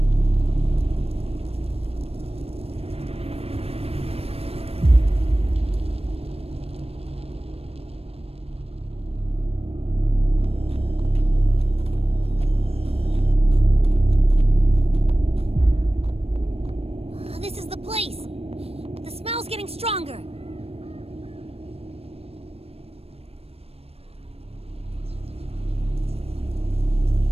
This is the place. The smell's getting stronger.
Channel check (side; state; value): left; late; 0.29 ms